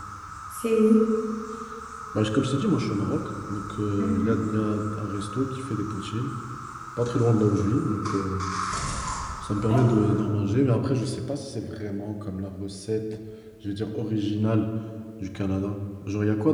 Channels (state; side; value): identical; both; correlation 1.00